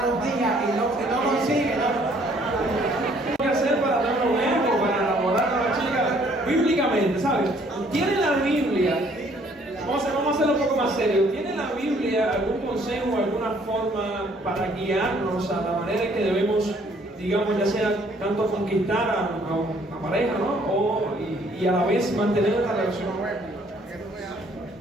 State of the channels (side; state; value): both; normal; correlation 0.62